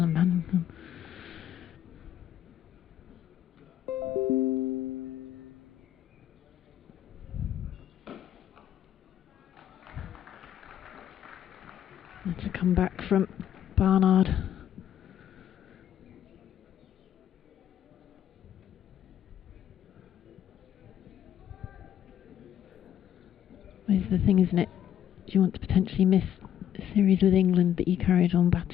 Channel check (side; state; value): right; quieter; 10.5 dB